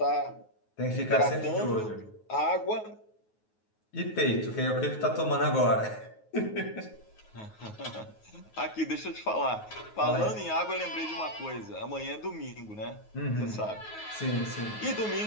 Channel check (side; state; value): right; late; 9.4 ms